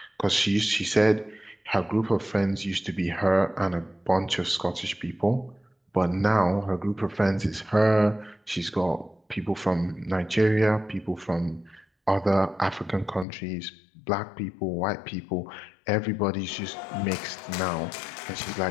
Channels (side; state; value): right; drops out; at 13.2 s